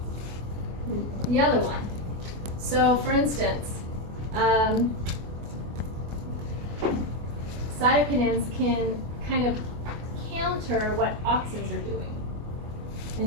the other one. So, for instance, cytokinins can kind of counter what auxins are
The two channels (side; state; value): left; late; 24 ms